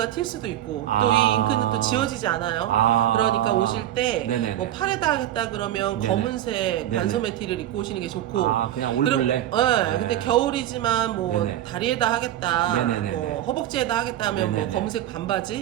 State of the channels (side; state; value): left; quieter; 12.5 dB